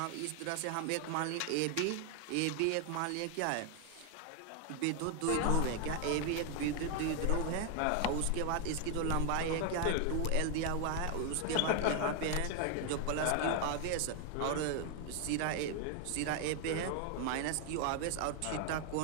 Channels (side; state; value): both; different; correlation 0.00